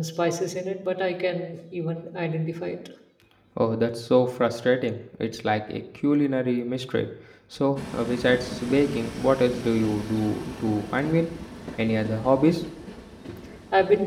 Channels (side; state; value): both; identical; correlation 1.00